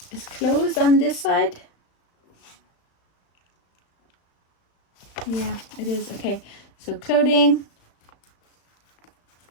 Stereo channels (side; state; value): right; late; 35 ms